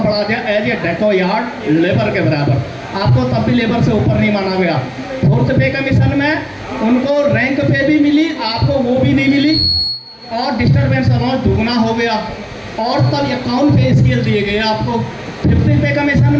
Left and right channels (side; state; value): both; identical; correlation 1.00